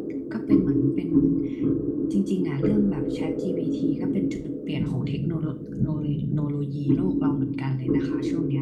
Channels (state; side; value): identical; both; correlation 1.00